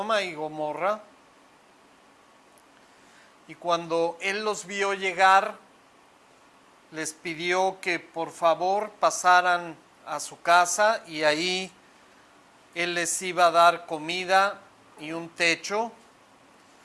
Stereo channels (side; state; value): both; identical; correlation 1.00